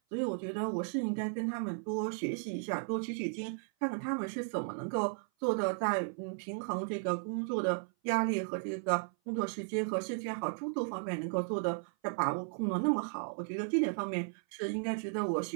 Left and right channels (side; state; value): left; silent; 54 dB below the other